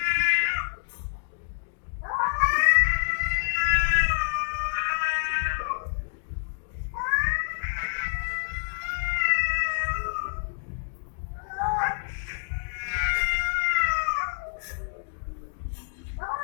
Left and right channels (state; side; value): silent; right; digital silence